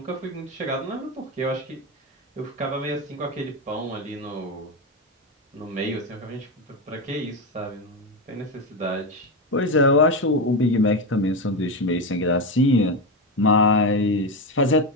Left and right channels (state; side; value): normal; both; correlation 0.14